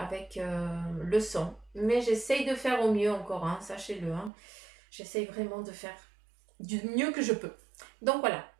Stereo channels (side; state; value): left; drops out; at 4.3 s